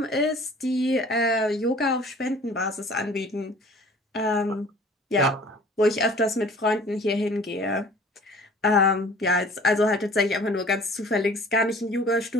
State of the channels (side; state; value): both; normal; correlation 0.49